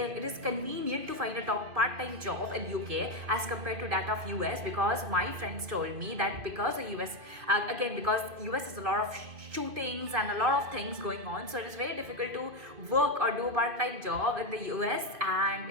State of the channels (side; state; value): left; late; 2.3 ms